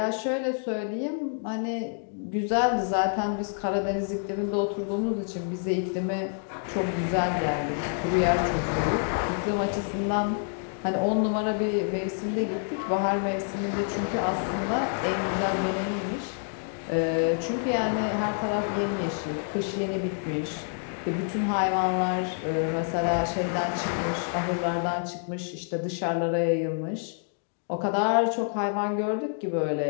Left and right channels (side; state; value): right; silent; 60 dB below the other